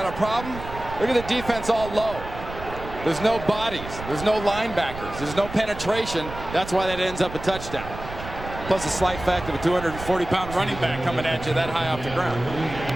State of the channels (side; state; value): right; noise; rumble, 11 dB below the sound